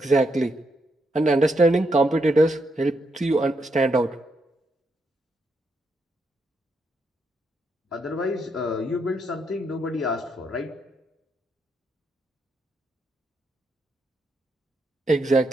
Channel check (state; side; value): normal; both; correlation 0.79